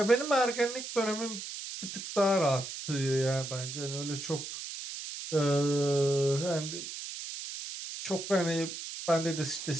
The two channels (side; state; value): right; noise; hiss, 8 dB below the sound